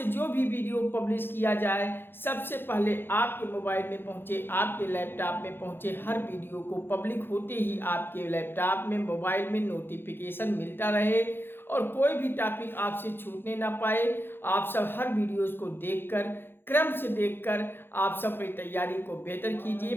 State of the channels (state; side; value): late; right; 0.10 ms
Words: जो भी वीडियो पब्लिश किया जाए सबसे पहले आपके मोबाइल में पहुँचे, आपके लैपटॉप में पहुँचे। हर वीडियो को पब्लिक होते ही आपके लैपटॉप में, मोबाइल में नोटिफिकेशन मिलता रहे और कोई भी टॉपिक आपसे छूटने ना पाए। आप सब हर वीडियोज़ को देखकर, क्रम से देखकर आप सब अपनी तैयारी को बेहतर कीजिए।